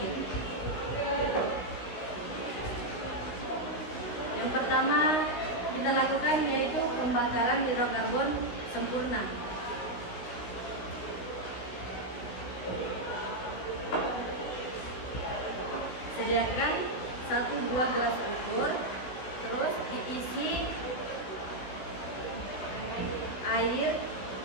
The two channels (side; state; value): right; late; 16 ms